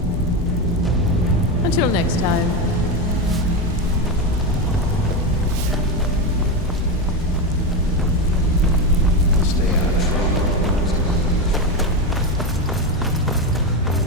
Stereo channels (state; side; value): normal; both; correlation 0.14